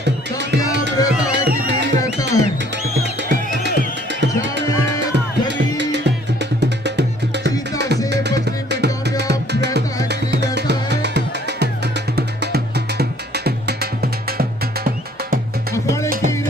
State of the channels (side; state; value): both; normal; correlation 0.59